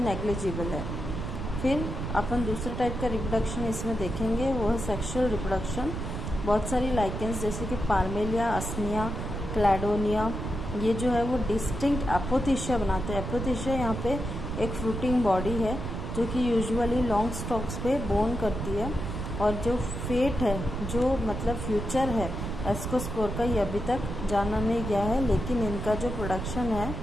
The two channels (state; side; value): noise; right; rumble, 5 dB below the sound